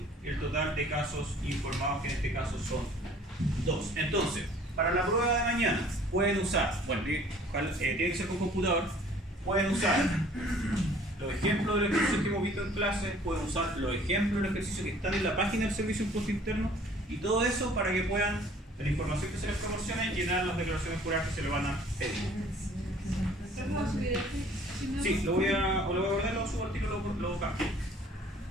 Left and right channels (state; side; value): normal; both; correlation 0.53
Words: el total de casos informados, que en este caso son 2. Entonces, para la prueba de mañana pueden usar, bueno, tiene que ser con computador, pueden usar los ejemplos de los ejercicios que hemos visto en clase, pueden usar los ejemplos de los ejercicios que están en la página del Servicio de Impuesto Interno y todo eso para que puedan, de la información que se les proporcione, llenar las declaraciones juradas que se le van a pedir. Sí, lo voy a guardar, lo subo al tiro, lo cambio.